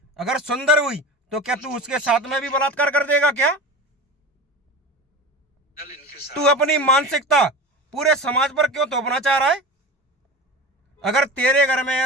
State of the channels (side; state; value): both; normal; correlation 0.31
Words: अगर सुंदर हुई तो क्या तू उसके साथ में भी बलात्कार कर देगा क्या? तू अपनी मानसिकता पूरे समाज पर क्यों थोपना चाह रहा है? अगर तेरे घर में